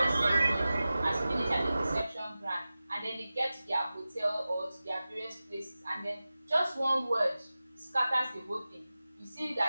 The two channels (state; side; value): inverted; both; correlation -0.96